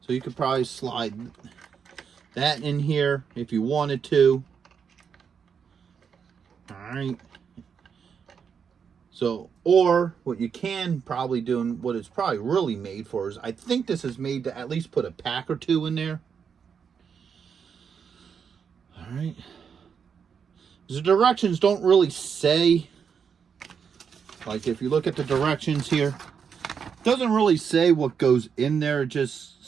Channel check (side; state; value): left; quieter; 6.8 dB